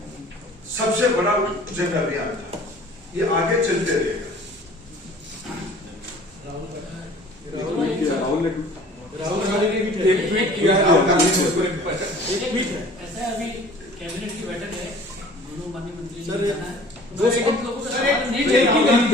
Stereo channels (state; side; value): normal; both; correlation 0.48